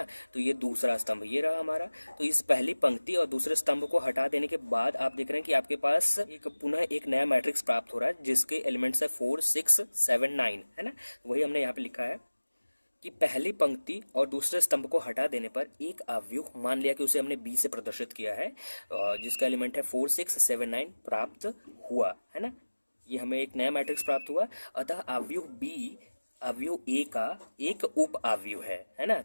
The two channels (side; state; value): both; inverted; correlation -1.00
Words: तो ये दूसरा स्तंभ ये रहा हमारा। तो इस पहली पंक्ति और दूसरे स्तंभ को हटा देने के बाद आप देख रहे हैं कि आपके पास पुनः एक नया मैट्रिक्स प्राप्त हो रहा है जिसके एलिमेंट्स है 4 6 7 9, है ना। वही हमने यहाँ पे लिखा है कि पहली पंक्ति और दूसरे स्तंभ को हटा देने पर एक अवयव, मान लिया कि उसे हमने बी से प्रदर्शित किया है, जिसका एलिमेंट है 4 6 7 9 प्राप्त हुआ, है ना। ये हमें एक नया मैट्रिक्स प्राप्त हुआ, अतः अवयव बी अवयव ए का एक उप अवयव है ना।